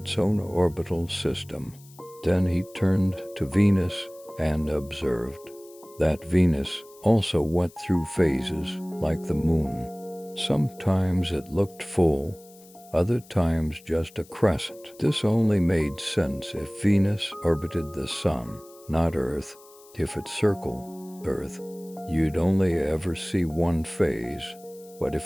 own orbital system. Then he turned to Venus and observed that Venus also went through phases like the moon. Sometimes it looked full, other times just a crescent. This only made sense if Venus orbited the sun, not Earth. If it circled Earth, you'd only ever see one phase. But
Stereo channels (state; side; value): noise; left; hiss, 24 dB below the sound